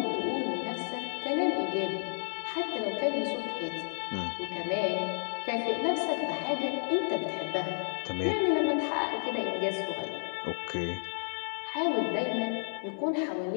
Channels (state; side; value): silent; right; digital silence